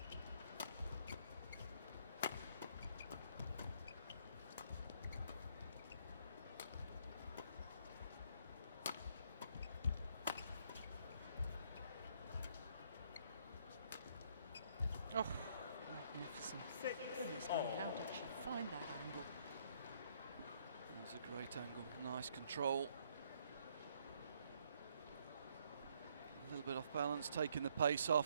Oh, magnificent. 6 Goodness me, all. how did she find that angle? That's a great angle, nice control. A little bit off balance, taking the pace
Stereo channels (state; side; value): inverted; both; correlation -0.68